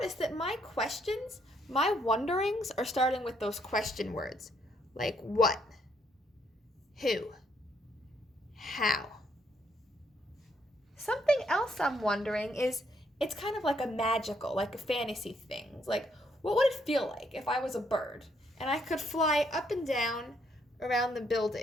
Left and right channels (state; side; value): normal; both; correlation 0.71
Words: that my questions, my wonderings are starting with those question words, like what? Who? How? Something else I'm wondering is, it's kind of like a fantasy thing. Like, what would it feel like if I was a bird and I could fly up and down around the